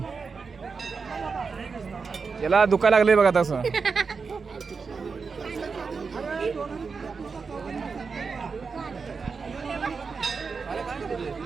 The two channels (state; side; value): quieter; left; 5.0 dB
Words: याला दुखायला लागले बघा तसं.